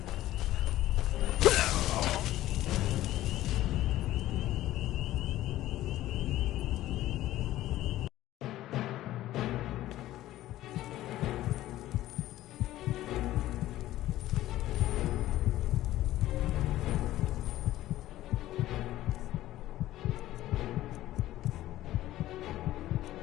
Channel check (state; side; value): quieter; right; 14.8 dB